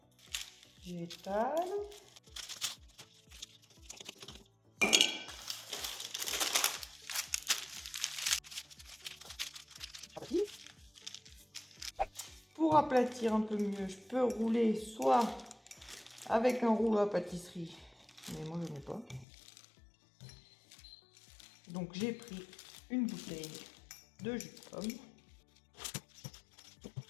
J'étale. Pour aplatir un peu mieux, je peux rouler soit avec un rouleau à pâtisserie, mais moi je n'ai pas. Donc j'ai pris une bouteille de jus de pomme.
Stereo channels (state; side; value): drops out; right; at 19.2 s